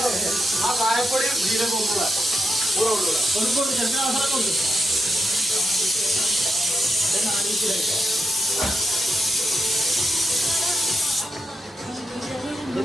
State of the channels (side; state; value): both; normal; correlation 0.85